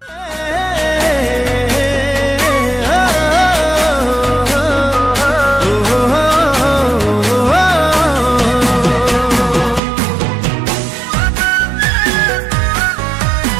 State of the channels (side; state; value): left; drops out; at 9.8 s